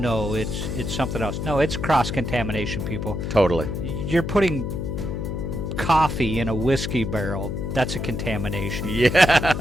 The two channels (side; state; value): left; noise; hum, 3 dB below the sound